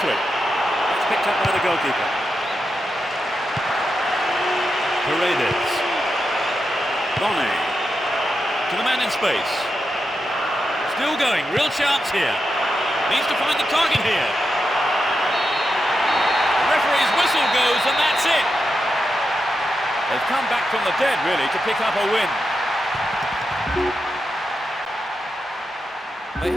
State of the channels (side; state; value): both; normal; correlation 0.87